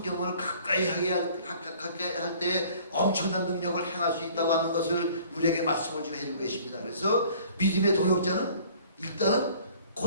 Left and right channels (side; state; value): both; inverted; correlation -0.53